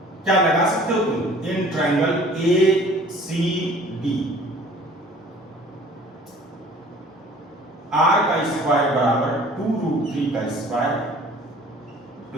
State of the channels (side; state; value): both; normal; correlation 0.50